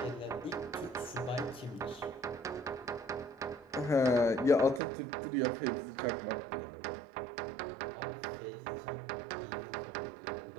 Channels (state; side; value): drops out; left; at 4.8 s